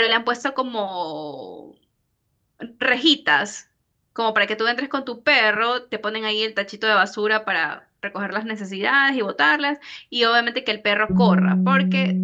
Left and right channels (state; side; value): identical; both; correlation 1.00